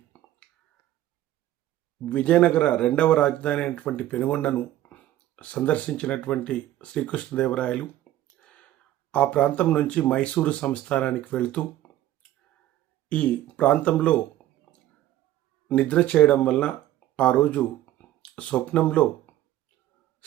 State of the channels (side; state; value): left; quieter; 13.6 dB